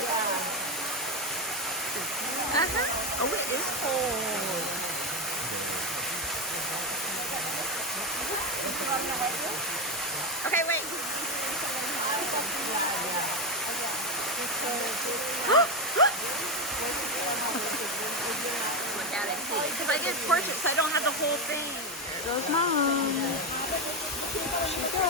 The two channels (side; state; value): both; normal; correlation 0.11